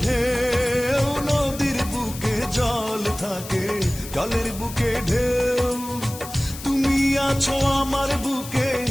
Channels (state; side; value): noise; left; hiss, 13 dB below the sound